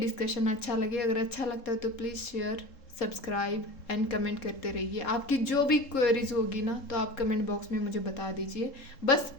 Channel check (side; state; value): right; late; 3.7 ms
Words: अच्छा लगे। अगर अच्छा लगता है तो please share, subscribe and comment करते रहिए। आपकी जो भी क्वेरीज होगी ना तो आप कमेंट बॉक्स में मुझे बता दीजिए, बस